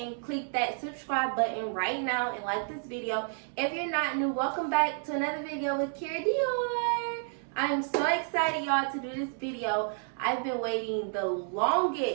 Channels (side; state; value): left; silent; 58 dB below the other